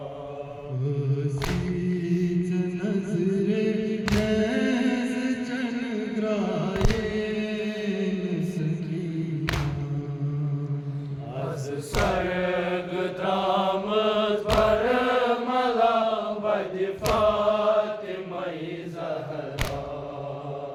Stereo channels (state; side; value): identical; both; correlation 1.00